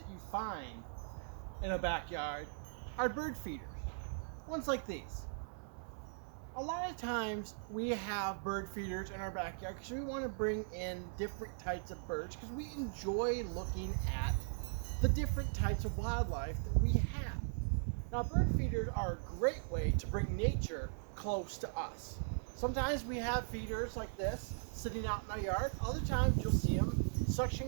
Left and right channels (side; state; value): left; silent; 52 dB below the other